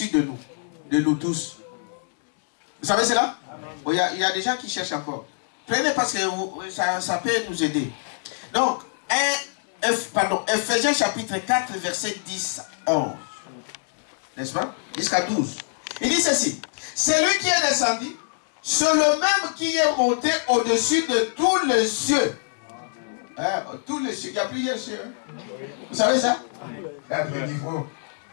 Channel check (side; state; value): right; silent; digital silence